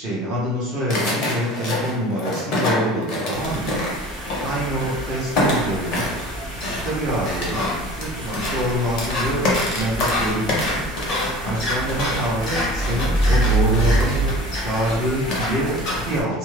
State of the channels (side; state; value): both; normal; correlation 0.43